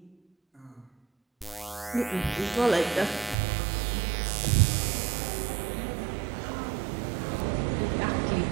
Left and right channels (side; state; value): left; drops out; at 3.4 s